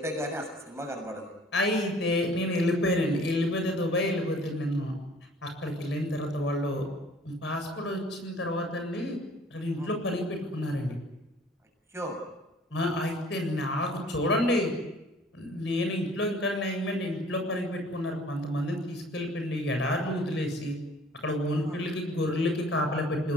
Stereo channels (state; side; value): normal; both; correlation 0.53